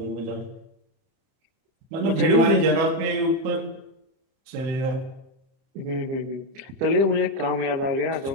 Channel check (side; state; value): left; late; 31 ms